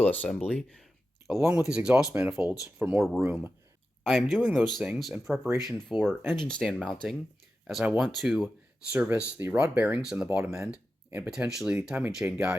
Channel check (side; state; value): both; normal; correlation 0.92